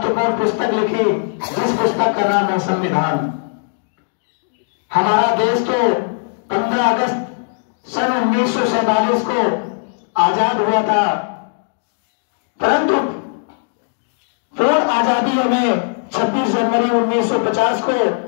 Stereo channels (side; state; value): right; silent; digital silence